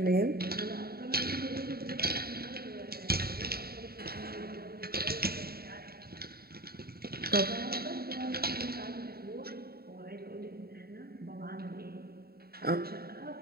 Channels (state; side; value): late; left; 0.45 ms